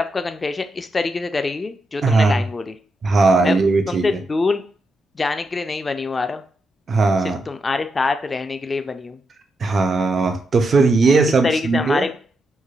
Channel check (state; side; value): normal; both; correlation 0.84